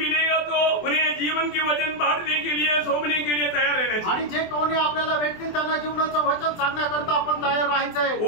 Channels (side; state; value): right; late; 24 ms